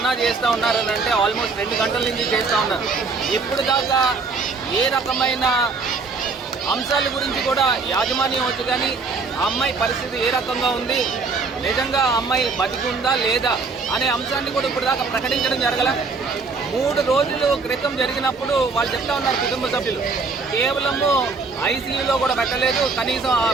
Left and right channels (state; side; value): quieter; left; 4.4 dB